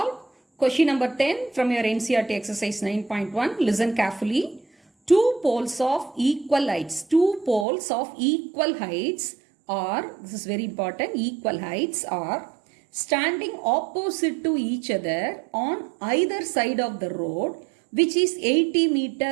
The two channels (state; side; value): drops out; left; at 7.7 s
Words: question number 10 from your NCERT exercise 9.1. Listen carefully. Two poles of equal heights. Two poles of equal heights are, this is very important, equal heights are standing opposite to each other on either side of the road, which is 80